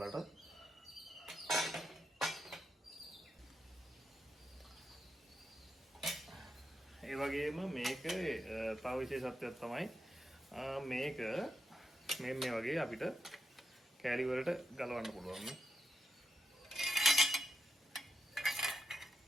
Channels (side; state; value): both; normal; correlation 0.85